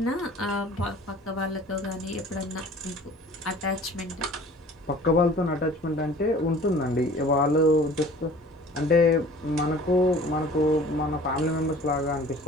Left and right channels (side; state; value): both; normal; correlation 0.47